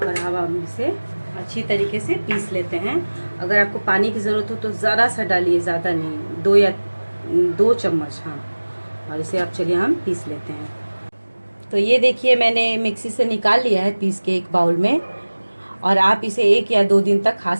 अब हम इसे अच्छी तरीके से पीस लेते हैं। अगर आपको पानी की ज़रूरत हो तो ज़रा सा डालिए, ज़्यादा नहीं, 2 चम्मच, हाँ। और इसे अब चलिए हम पीस लेते हैं। तो ये देखिए मैंने मिक्सी से निकाल लिया है पीस के एक बाउल में, और आप इसे 1 या 2 दिन तक खा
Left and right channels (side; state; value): both; inverted; correlation -1.00